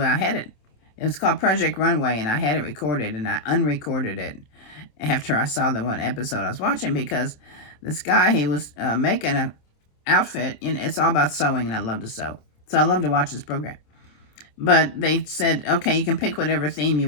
had it. It was called Project Runway, and I had it recorded, and I unrecorded it after I saw the one episode I was watching, because this guy, he was making an outfit, and it's all about sewing, and I love to sew. So I love to watch this program. But they said, okay, you can pick whatever theme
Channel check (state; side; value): late; right; 27 ms